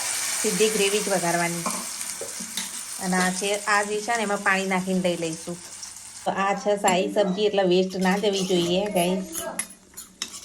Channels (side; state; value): both; identical; correlation 1.00